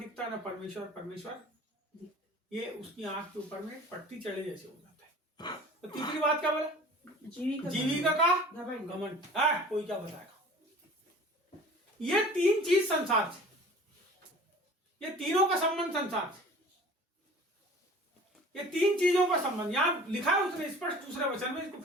ना परमेश्वर, ये उसकी आंख के ऊपर में पट्टी चढ़े जैसे हो जाता है। तो तीसरी बात क्या बोला? जीविका का घमंड। कोई क्या बताएगा? ये 3 चीज संसार से, ये तीनों का संबंध संसार से, ये 3 चीजों का संबंध यहां लिखा है उसने स्पष्ट दूसरे वचन में। इसको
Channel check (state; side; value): normal; both; correlation 0.44